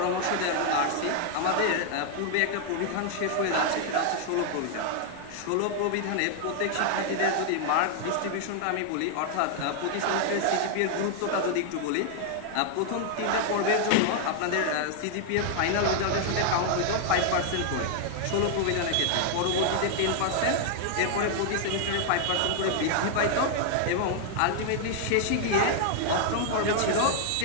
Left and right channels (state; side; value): different; both; correlation 0.00